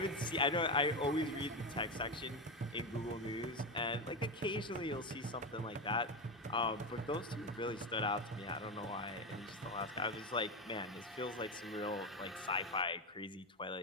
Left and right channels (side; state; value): both; normal; correlation 0.15